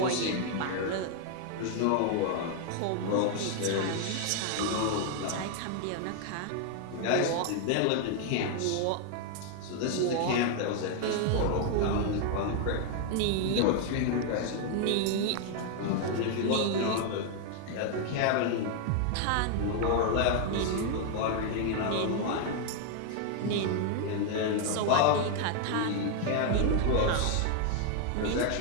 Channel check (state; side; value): different; both; correlation 0.00